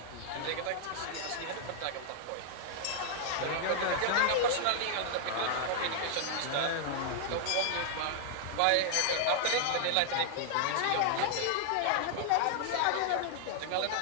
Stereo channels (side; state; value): both; different; correlation -0.01